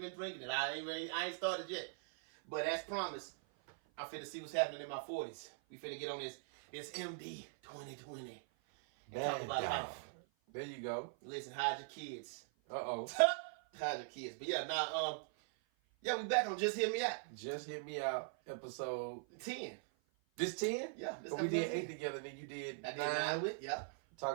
drinking it. I ain't started yet. But as promised, I'm finna see what's happening in my 40s. We finna get on this MD 2020 and talk about life. There you go. Listen, hide your kids. Uh-oh. Hide your kids. But yeah, we back on Just Hear Me Out. Just Hit Me Out, episode 10. This 10? Yeah, this but we did 10. 8 together, then you did I did 9 with, yeah.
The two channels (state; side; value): silent; left; 50 dB below the other